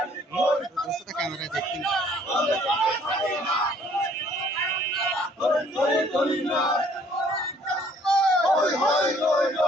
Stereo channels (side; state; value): both; normal; correlation 0.60